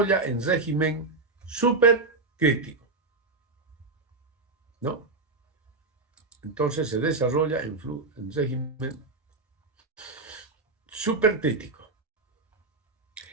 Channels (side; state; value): left; quieter; 3.6 dB